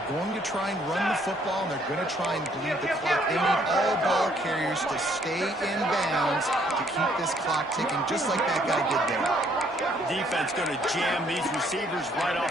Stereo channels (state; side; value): normal; both; correlation 0.66